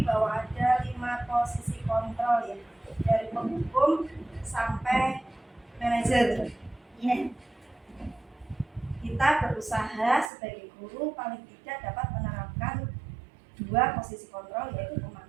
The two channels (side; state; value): left; drops out; at 10.3 s